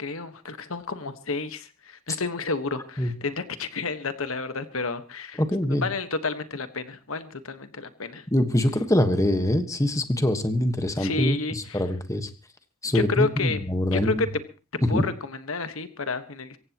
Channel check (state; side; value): normal; both; correlation 0.59